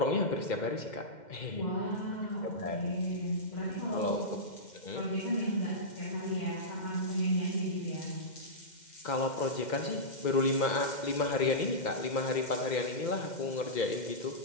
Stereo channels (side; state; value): right; late; 2.1 ms